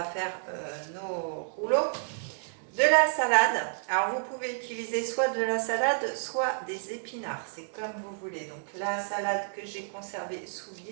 faire nos rouleaux. De la salade, alors vous pouvez utiliser soit de la salade, soit des épinards, c'est comme vous voulez. Donc la salade que j'ai conservée sous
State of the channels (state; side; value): silent; left; digital silence